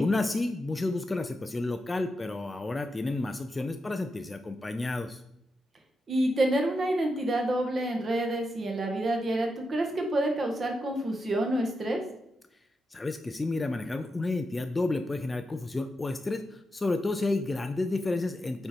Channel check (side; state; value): both; normal; correlation 0.87